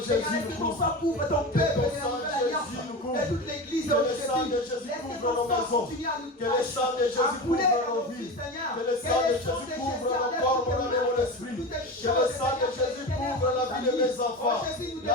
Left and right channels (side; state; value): both; normal; correlation 0.26